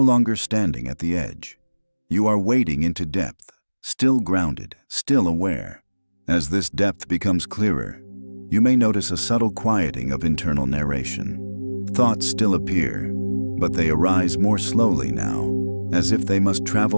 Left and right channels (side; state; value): both; inverted; correlation -1.00